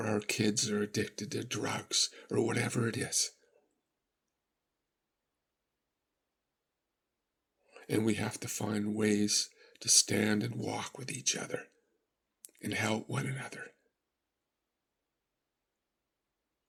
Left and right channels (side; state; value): both; identical; correlation 1.00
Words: our kids are addicted to drugs, or whatever it is. And we have to find ways to stand and walk with each other and help one another,